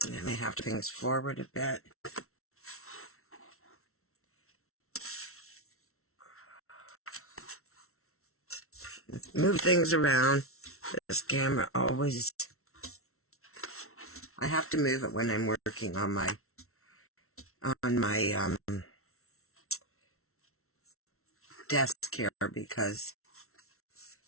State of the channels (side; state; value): right; late; 0.63 ms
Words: I may have to things forward a bit. Move things around. This camera always... I have to move it when I'm working on my desk here, because